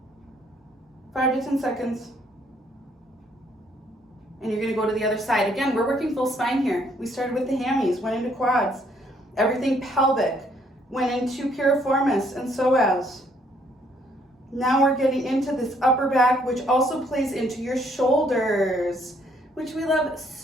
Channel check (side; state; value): both; normal; correlation 0.67